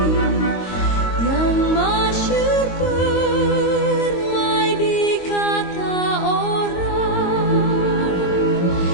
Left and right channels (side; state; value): right; late; 22 ms